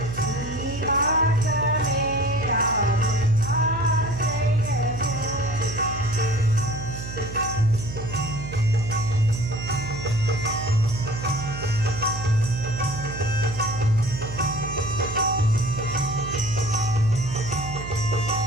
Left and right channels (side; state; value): right; noise; hum, 9 dB below the sound